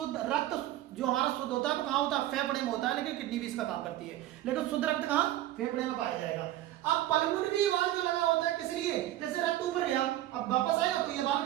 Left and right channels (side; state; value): left; quieter; 14.1 dB